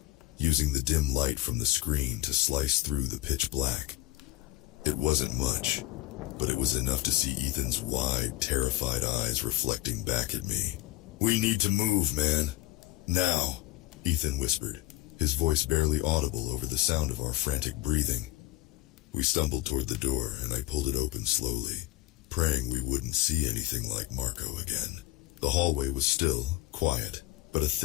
using the dim light from the screen to slice through the pitch black. It wasn't much, but it was enough to see Ethan's wide, terrified eyes reflecting back at me. "We need to move, man. Now," Ethan whispered, his voice barely audible over the sound of our frantic breathing. We stumbled toward the door, and I pulled it open slowly, praying we wouldn't see anything like Marco again. The hallway was still, quiet, but a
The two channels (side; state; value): right; quieter; 17.3 dB